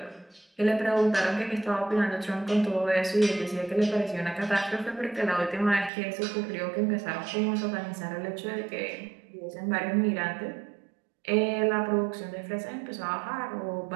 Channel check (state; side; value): drops out; left; at 5.9 s